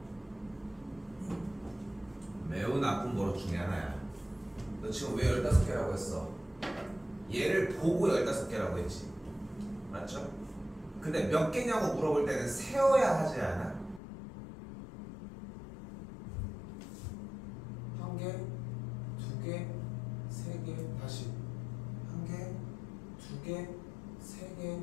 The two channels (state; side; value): drops out; right; at 14.0 s